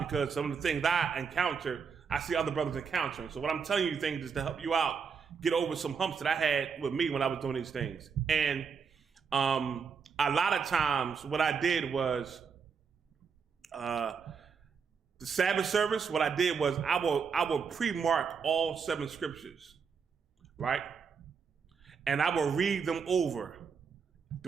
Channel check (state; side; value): quieter; left; 6.0 dB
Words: because some of the things I encounter, I see other brothers encountering. So what I'm telling you things is to help you out get over some humps that I had with me when I was doing these things. And a lot of times what I did was the Sabbath service, what I did was I will pre-mark all 7 scriptures, right? And I will read them over